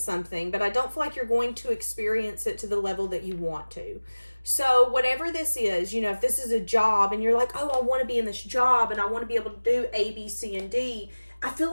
something, but I don't feel like you're going to experience it to the level that you want to. So whatever this is, if this is a job and you're like, oh, I want to be in this job and I want to be able to do A, B, C, and D, I feel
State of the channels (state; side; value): inverted; both; correlation -1.00